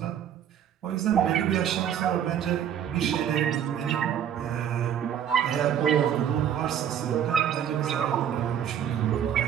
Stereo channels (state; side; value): quieter; left; 9.4 dB